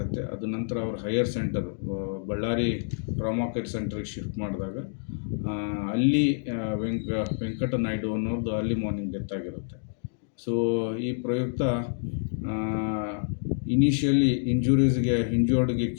ಅದು ನಂತರ ಅವ್ರ higher centre Ballari trauma care ಸೆಂಟರ್ಗೆ ಶಿಫ್ಟ್ ಮಾಡಿದಾಗ ಅಲ್ಲಿ ವೆಂಕಟ ನಾಯ್ಡು ಅನ್ನೋರ್ದು ಅರ್ಲಿ ಮಾರ್ನಿಂಗ್ ಡೆತ್ ಆಗಿರುತ್ತೆ. ಸೊ ಈ ಪ್ರಯುಕ್ತ ಇನಿಷಿಯಲಿ ಇಂಜೂರ್ಡ್ಗೆ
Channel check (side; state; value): right; silent; digital silence